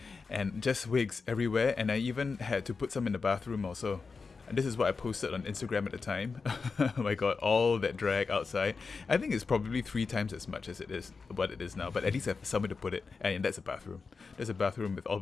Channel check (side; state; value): right; quieter; 4.7 dB